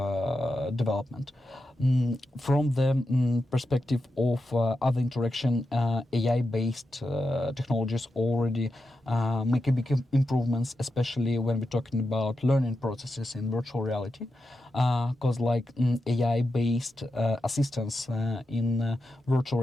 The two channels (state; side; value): normal; both; correlation 0.88